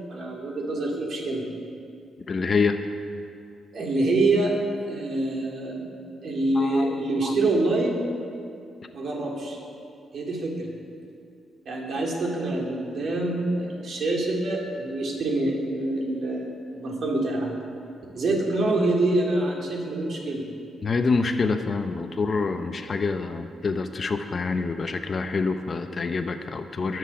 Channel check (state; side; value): normal; both; correlation 0.79